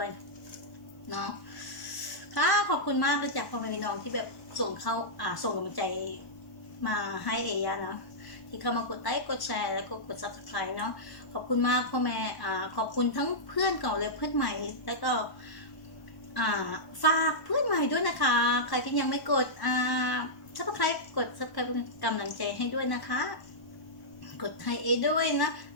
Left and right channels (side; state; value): right; late; 1.1 ms